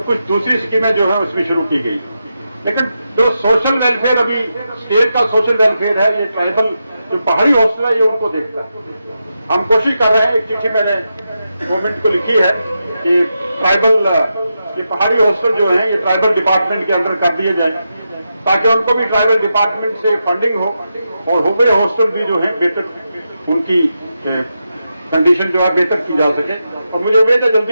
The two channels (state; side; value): inverted; both; correlation -0.87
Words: कुछ दूसरी स्कीमें जो है उसमें शुरू की गई, लेकिन जो सोशल वेलफेयर अभी स्टेट का सोशल वेलफेयर है, ये ट्राइबल जो पहाड़ी हॉस्टल है ये उनको देखता है। हम कोशिश कर रहे हैं, एक चिट्ठी मैंने गवर्नमेंट को लिखी है कि ट्राइबल, ये पहाड़ी हॉस्टल जो है ये ट्राइबल डिपार्टमेंट के अंदर कर दिए जाए, ताकि उनको भी ट्राइबल डिपार्टमेंट से फंडिंग हो और हुबे हॉस्टल भी जो है बेहतर, उनकी कंडीशन जो है बेहतर की जा सके। और मुझे उम्मीद है